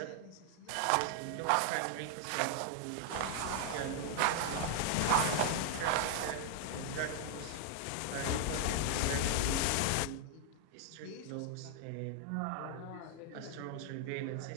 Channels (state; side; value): different; both; correlation 0.00